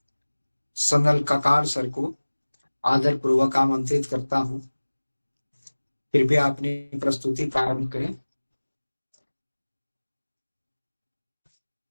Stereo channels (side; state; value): both; inverted; correlation -1.00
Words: सनल ककार सर को आदर पूर्वक आमंत्रित करता हूं। कृपया अपनी प्रस्तुति प्रारंभ करें।